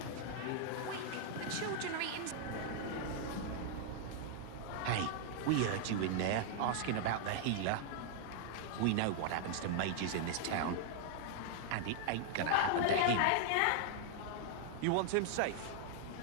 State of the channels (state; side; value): different; both; correlation 0.00